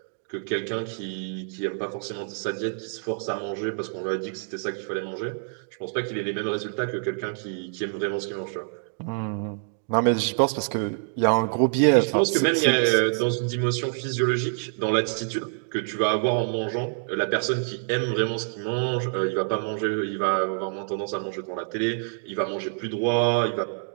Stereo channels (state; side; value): silent; left; digital silence